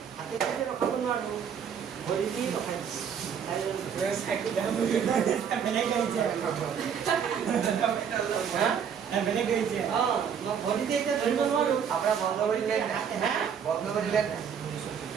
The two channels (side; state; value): left; quieter; 7.6 dB